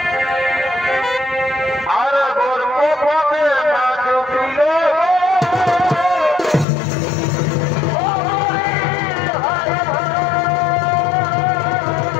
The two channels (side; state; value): right; drops out; at 6.7 s